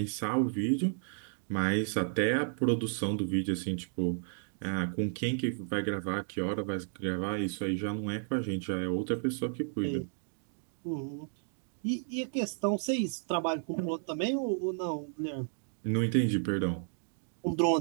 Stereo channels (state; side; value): silent; left; digital silence